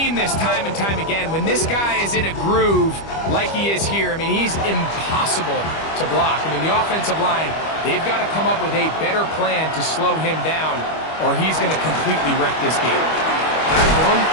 this time and time again. When this guy is in a groove like he is here, I mean, he's impossible to block. I mean, the offensive line, they've got to come up with a better plan to slow him down, or he's going to completely wreck this game. That one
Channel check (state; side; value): late; right; 25 ms